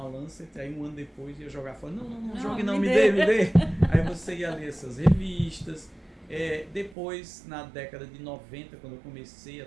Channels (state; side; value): drops out; left; at 7.0 s